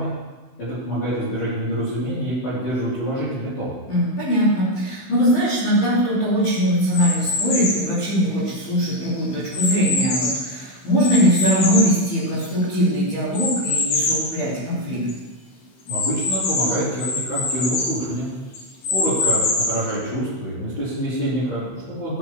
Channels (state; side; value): late; right; 16 ms